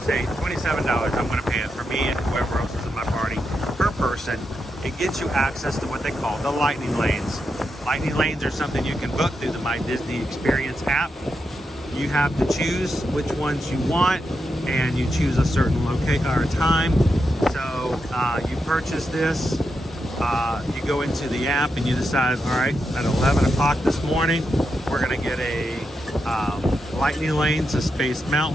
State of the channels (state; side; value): normal; both; correlation 0.86